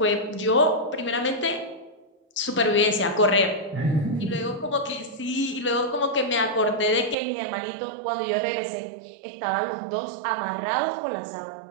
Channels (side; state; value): left; drops out; at 7.2 s